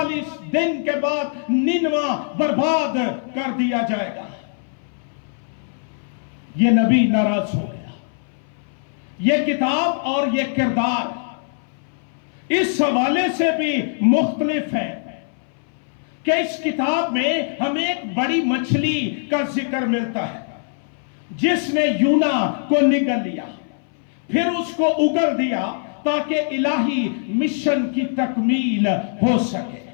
دن کے بعد نینوا برباد کر دیا جائے گا۔ یہ نبی ناراض ہو گیا۔ یہ کتاب اور یہ کردار اس حوالے سے بھی مختلف ہے کہ اس کتاب میں ہمیں ایک بڑی مچھلی کا ذکر ملتا ہے، جس نے یونا کو نگل لیا، پھر اس کو اگل دیا تاکہ الہی مشن کی تکمیل ہو سکے۔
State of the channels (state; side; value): silent; right; 60 dB below the other